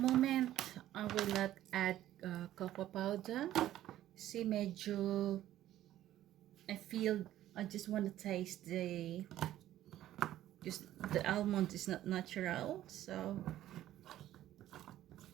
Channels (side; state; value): left; quieter; 13.2 dB